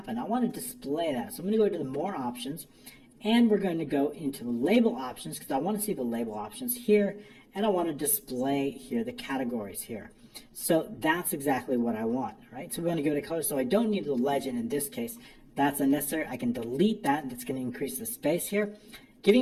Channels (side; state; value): both; identical; correlation 1.00